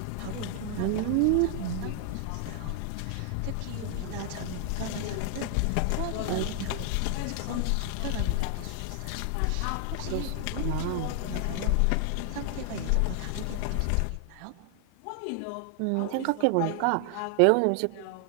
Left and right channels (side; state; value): both; different; correlation 0.00